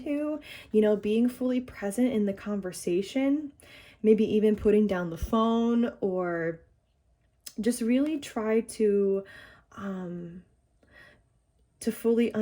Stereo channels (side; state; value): both; identical; correlation 1.00